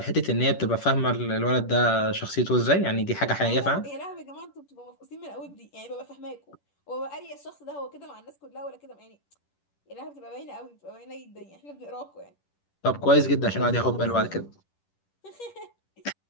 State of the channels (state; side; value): late; right; 10 ms